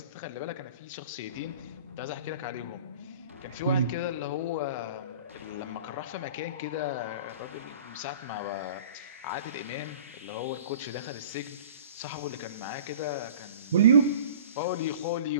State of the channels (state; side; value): inverted; both; correlation -0.44